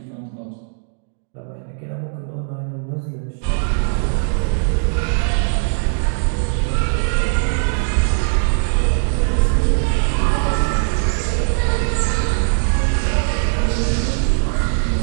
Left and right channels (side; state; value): left; silent; digital silence